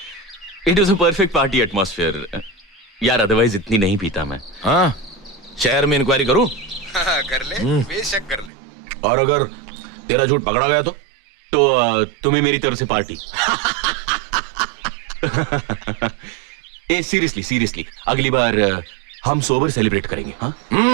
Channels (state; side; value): drops out; left; at 8.5 s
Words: It was a perfect party atmosphere यार, अदरवाइज इतनी नहीं पीता मैं। हाँ, शहर में इंक्वायरी करूं? कर ले, बेशक कर ले। और अगर तेरा झूठ पकड़ा गया तो तुम्हें मेरी तरफ से पार्टी। ए सीरियसली अगली बार हम सोबर सेलिब्रेट करेंगे। हाँ,